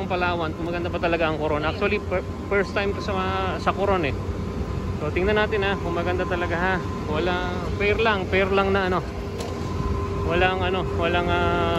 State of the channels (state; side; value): identical; both; correlation 1.00